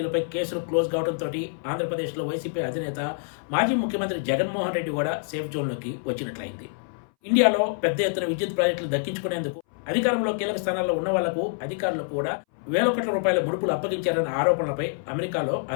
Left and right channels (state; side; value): silent; right; 61 dB below the other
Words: కేసులు క్లోజ్ కావడంతో ఆంధ్రప్రదేశ్లో వైసీపీ అధినేత మాజీ ముఖ్యమంత్రి జగన్మోహన్ రెడ్డి కూడా సేఫ్ జోన్లోకి వచ్చినట్లయింది. ఇండియాలో పెద్ద ఎత్తున విద్యుత్ ప్రాజెక్టులు దక్కించుకునేందుకు అధికారంలో కీలక స్థానాల్లో ఉన్న వాళ్లకు అధికారులు కూడా వేల కోట్ల రూపాయల ముడుపులు అప్పగించారన్న ఆరోపణలపై అమెరికాలో